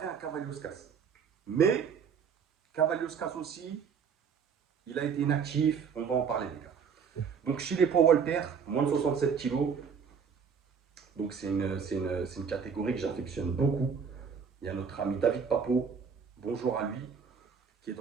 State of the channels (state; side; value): quieter; left; 6.5 dB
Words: un Cavalioskas. Mais Cavalioskas aussi, il a été inactif, on va en parler, les gars. Donc chez les poids Walter, moins de 67 kilos, donc c'est une catégorie que j'affectionne beaucoup. Il y a notre ami David Papo, bonjour à lui, qui est